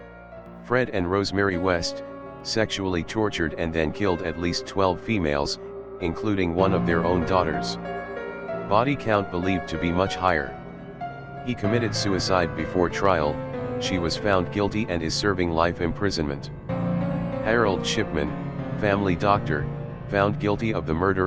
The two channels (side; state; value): both; identical; correlation 1.00